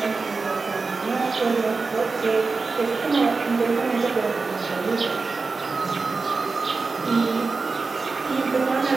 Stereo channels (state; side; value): quieter; left; 4.2 dB